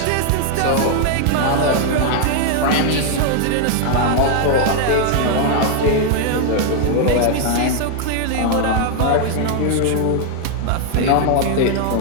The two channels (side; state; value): both; different; correlation 0.00